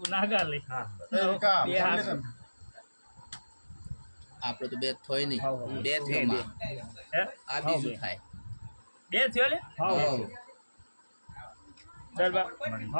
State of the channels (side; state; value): both; inverted; correlation -1.00